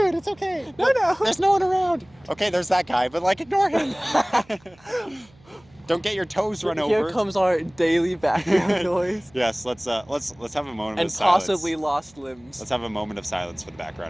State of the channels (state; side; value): noise; right; hum, 29 dB below the sound